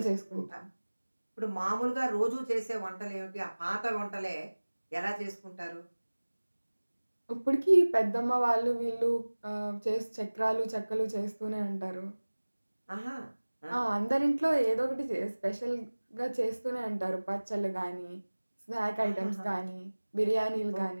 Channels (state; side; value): inverted; both; correlation -1.00